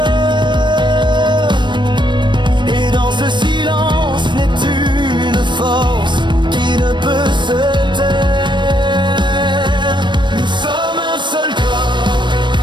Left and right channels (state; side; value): late; left; 0.22 ms